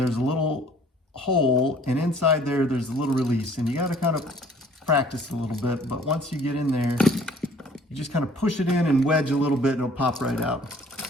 a little hole, and inside there's a little release, and you gotta kind of practice a little bit, but once you get in there, you just kind of push it in and wedge a little bit and it'll pop right out.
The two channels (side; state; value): both; normal; correlation 0.55